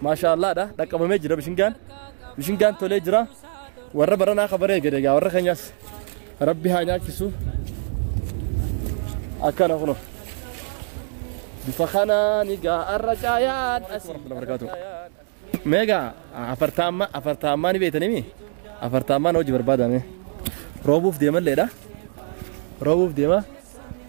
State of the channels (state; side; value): silent; left; digital silence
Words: ما شاء الله ده دكمه جرا بشنغان تولي جرا ور برنا خبره غدغا ور خنياس ربي هانيا كيسو اكن هونو بفخنا نيغا الرجايات اسلام بركاته ميجا أفرتاما نبيتني مي أفرتاما نوجي بربادا مي روبوف ديما ليدا روبوف ديما